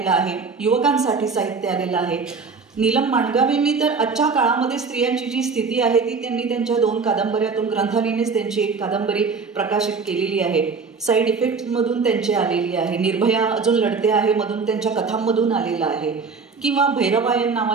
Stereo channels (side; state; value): left; quieter; 4.9 dB